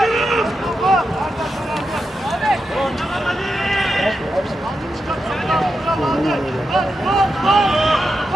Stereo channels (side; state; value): both; normal; correlation 0.88